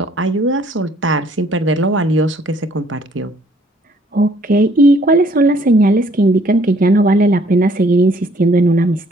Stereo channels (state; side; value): normal; both; correlation 0.62